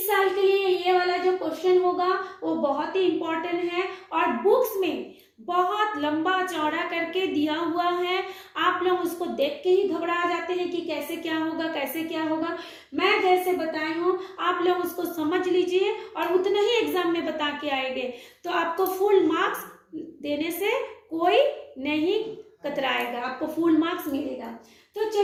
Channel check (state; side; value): identical; both; correlation 1.00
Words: साल के लिए ये वाला जो क्वेश्चन होगा वो बहुत ही इम्पोर्टेंट है और बुक्स में बहुत लंबा चौड़ा करके दिया हुआ है। आप लोग उसको देख के ही घबरा जाते हैं कि कैसे क्या होगा, कैसे क्या होगा। मैं जैसे बताई हूँ आप लोग उसको समझ लीजिए और उतना ही एग्जाम में बता के आएंगे, तो आपको फुल मार्क्स देने से कोई नहीं कतराएगा, आपको फुल मार्क्स मिलेगा। तो